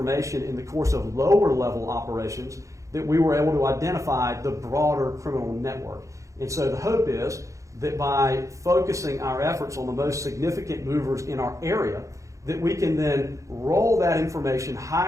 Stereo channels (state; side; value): late; left; 0.15 ms